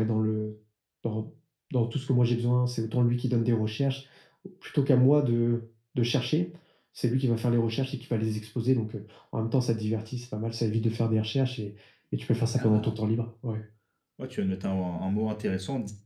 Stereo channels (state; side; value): identical; both; correlation 1.00